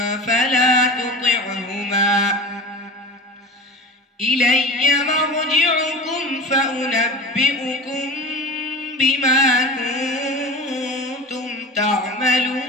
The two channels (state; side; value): normal; both; correlation 0.32